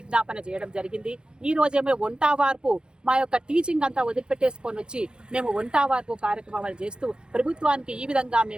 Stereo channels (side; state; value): left; late; 0.049 ms